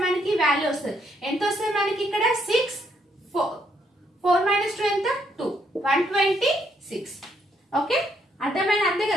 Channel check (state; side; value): normal; both; correlation 0.73